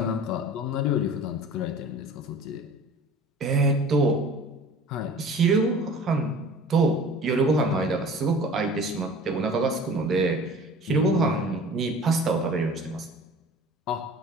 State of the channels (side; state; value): both; normal; correlation 0.43